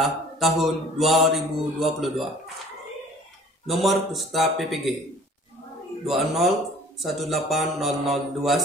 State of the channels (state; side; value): normal; both; correlation 0.50